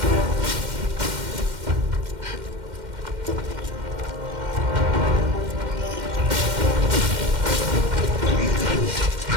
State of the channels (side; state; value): left; late; 2.1 ms